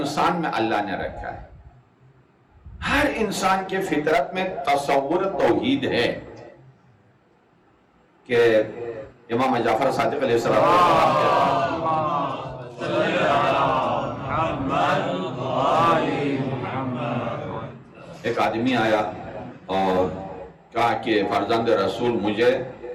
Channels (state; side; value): identical; both; correlation 1.00